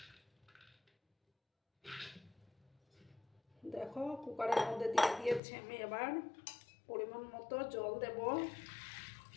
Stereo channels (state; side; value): drops out; right; at 5.4 s